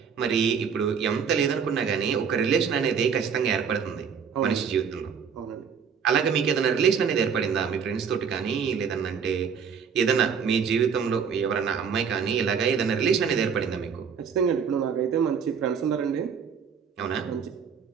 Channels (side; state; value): left; quieter; 6.7 dB